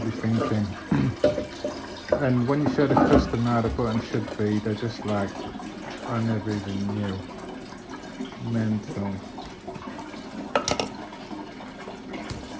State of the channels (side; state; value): both; identical; correlation 1.00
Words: thinking? And when you show the customer how the button should be, they're just like, I never even knew. Mental.